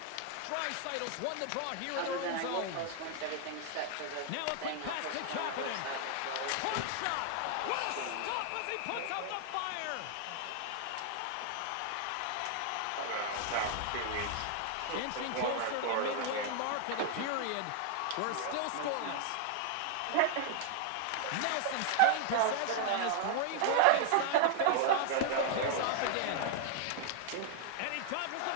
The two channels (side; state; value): both; different; correlation 0.00